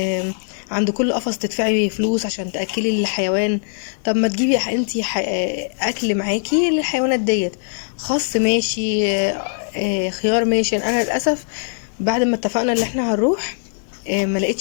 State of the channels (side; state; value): right; silent; 65 dB below the other